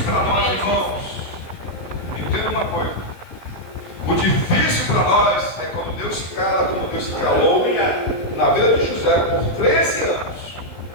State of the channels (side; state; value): right; late; 16 ms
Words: para nós, irmãos, entenda uma coisa: o difícil para nós é quando Deus se cala, como Deus se calou na vida de José por 13 anos.